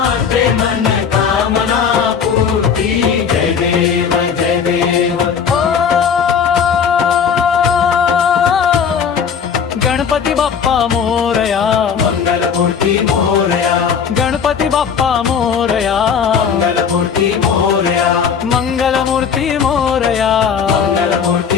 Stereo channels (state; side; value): quieter; right; 6.9 dB